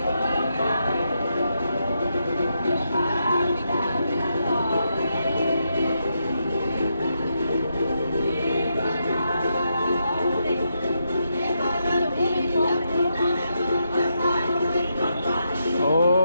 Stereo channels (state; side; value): inverted; both; correlation -0.82